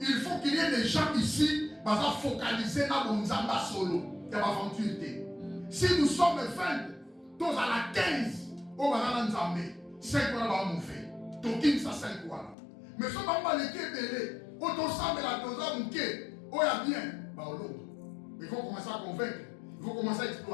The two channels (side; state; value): right; drops out; at 12.6 s